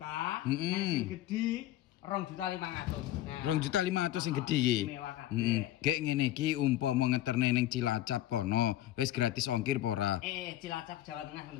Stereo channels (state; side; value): quieter; right; 13.9 dB